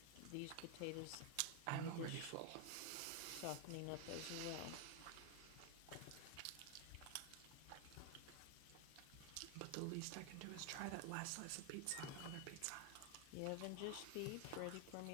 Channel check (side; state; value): both; different; correlation 0.00